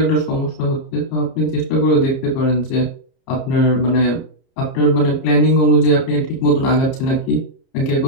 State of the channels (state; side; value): late; right; 30 ms